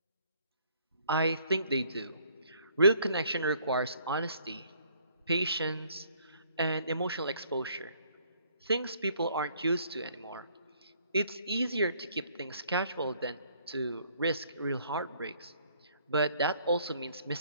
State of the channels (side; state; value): both; inverted; correlation -0.62